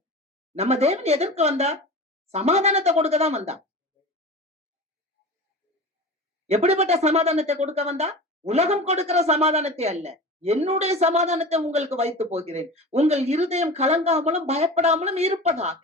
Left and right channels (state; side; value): normal; both; correlation 0.33